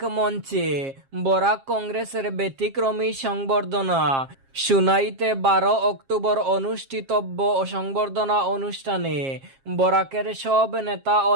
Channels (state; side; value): late; left; 7.5 ms